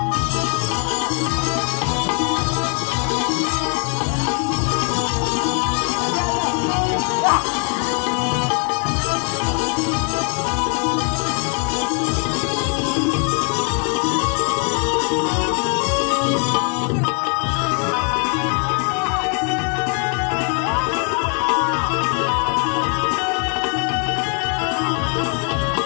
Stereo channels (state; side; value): quieter; right; 39.5 dB